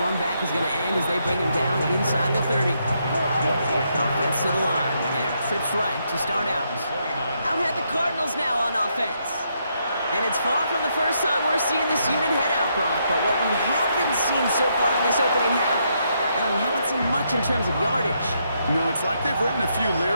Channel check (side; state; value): both; inverted; correlation -0.77